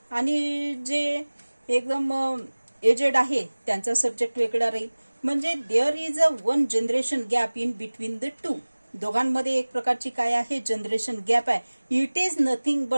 आणि जे एकदम एजेड आहे त्यांचा सब्जेक्ट वेगळा राहील. म्हणजे there is a one generation gap in between the two. दोघांमध्ये एक प्रकारची काय आहे, जनरेशन गॅप आहे. It is nothing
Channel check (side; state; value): both; inverted; correlation -1.00